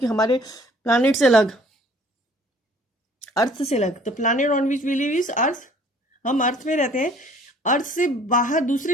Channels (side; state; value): both; normal; correlation 0.55